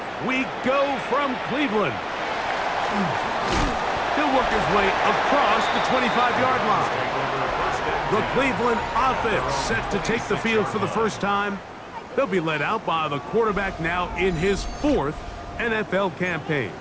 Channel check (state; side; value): identical; both; correlation 1.00